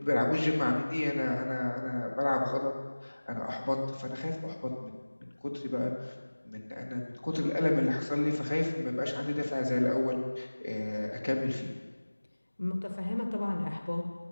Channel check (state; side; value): inverted; both; correlation -1.00